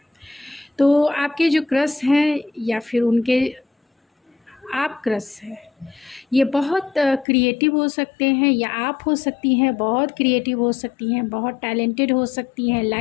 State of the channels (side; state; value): right; drops out; at 7.2 s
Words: तो आपके जो क्रश हैं या फिर उनके आप क्रश है, ये बहुत क्रिएटिव हो सकते हैं या आप हो सकती हैं बहुत क्रिएटिव हो सकती हैं, बहुत टैलेंटेड हो सकती हैं,